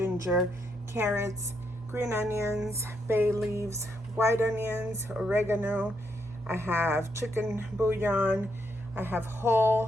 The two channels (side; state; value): both; normal; correlation 0.78